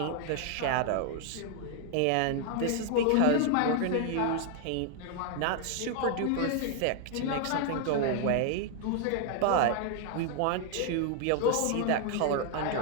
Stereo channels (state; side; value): different; both; correlation 0.00